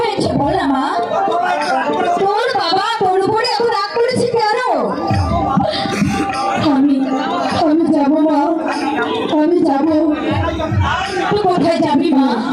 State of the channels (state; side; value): identical; both; correlation 1.00